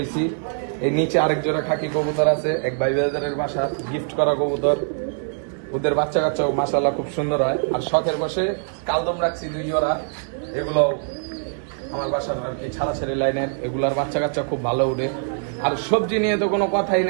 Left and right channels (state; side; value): silent; left; digital silence